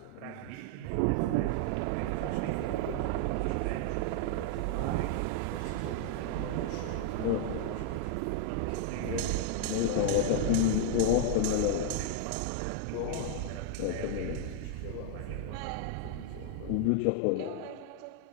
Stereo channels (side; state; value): both; different; correlation 0.00